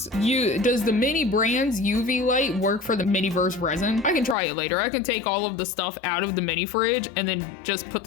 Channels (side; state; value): right; drops out; at 4.4 s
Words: does the Mini Brands UV light work for the Miniverse resin? I can try it later. I can take all of the stuff out of the mini fridge and then just put